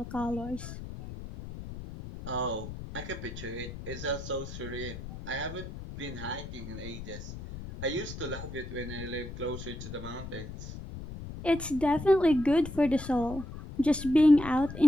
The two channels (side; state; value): left; noise; rumble, 10 dB below the sound